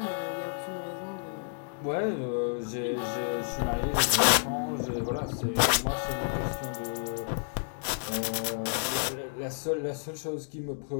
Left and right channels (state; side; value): silent; right; digital silence